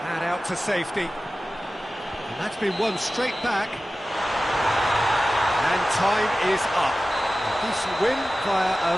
And out to safety. And that's been won straight back. And time is up. A decent win via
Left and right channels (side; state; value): both; normal; correlation 0.95